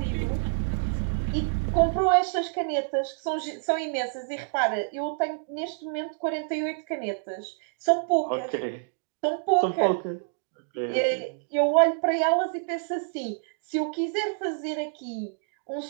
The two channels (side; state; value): left; silent; digital silence